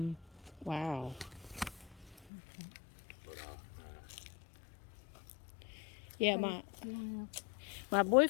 Wow. But Yeah, So, my you wanna- my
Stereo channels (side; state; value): right; drops out; at 2.2 s